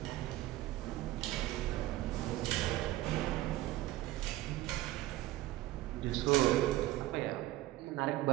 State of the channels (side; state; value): left; quieter; 16.4 dB